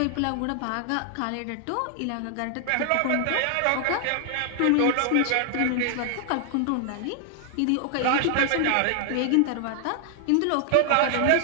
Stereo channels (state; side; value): different; both; correlation 0.00